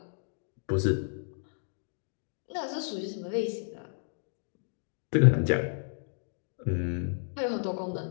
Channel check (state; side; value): silent; right; digital silence